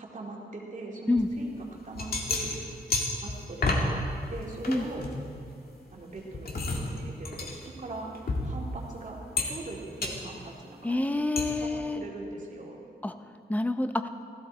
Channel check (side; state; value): both; normal; correlation 0.71